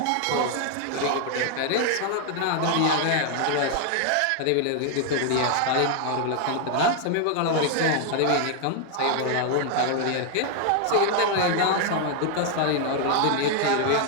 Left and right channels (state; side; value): different; both; correlation 0.00